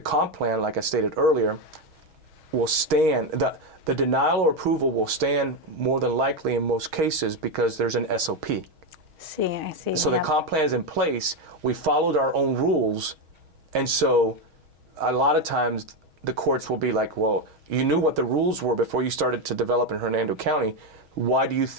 comp plan, like I stated earlier, will stand. The denial or approval will stand more than likely in most cases because there's an SOP. I see. So the comp plan is in place. We followed our own rules, and so a lot of times the courts will be like, well, you knew what the rules were before you started to develop in Hernando County. Why do you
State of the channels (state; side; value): late; left; 6.3 ms